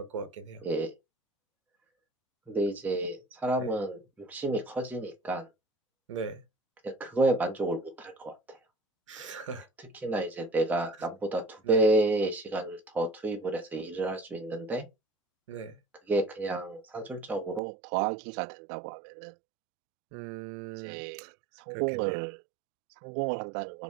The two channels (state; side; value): drops out; left; at 17.6 s